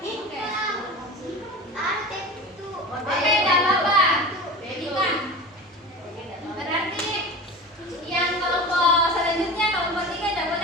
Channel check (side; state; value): both; normal; correlation 0.32